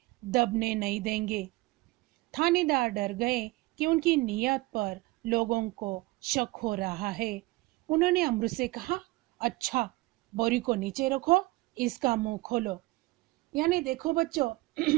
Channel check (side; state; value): left; quieter; 21.4 dB